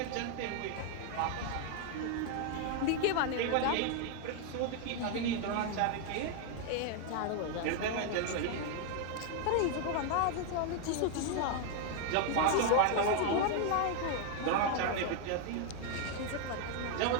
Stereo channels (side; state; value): both; different; correlation 0.00